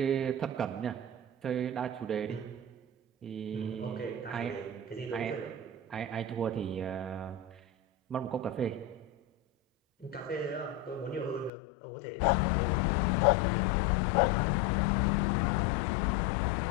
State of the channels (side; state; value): right; drops out; at 11.5 s